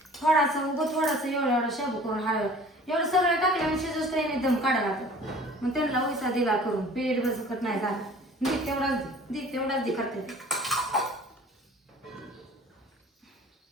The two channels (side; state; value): both; normal; correlation 0.47